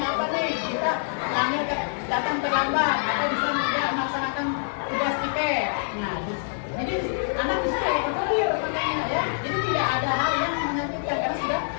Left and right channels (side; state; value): right; silent; digital silence